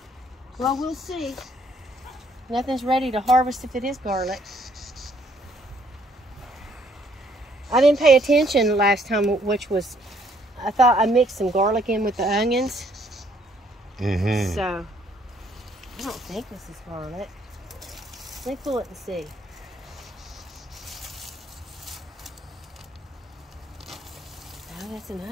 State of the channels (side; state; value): both; normal; correlation 0.66